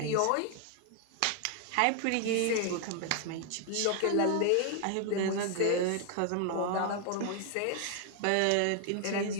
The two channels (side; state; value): both; different; correlation 0.00